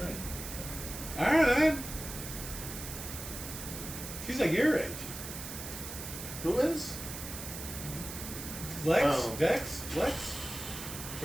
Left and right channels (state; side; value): noise; right; hiss, 8 dB below the sound